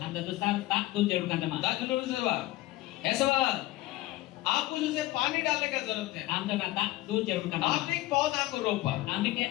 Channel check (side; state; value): right; quieter; 17.5 dB